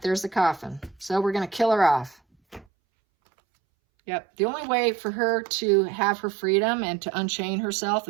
there's the coffin. So we're going to kill her off. Yep, the only way for her to have her freedom and to unchain herself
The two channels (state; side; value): drops out; left; at 2.7 s